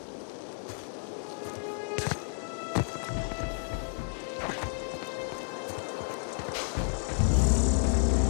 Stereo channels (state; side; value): silent; right; 57 dB below the other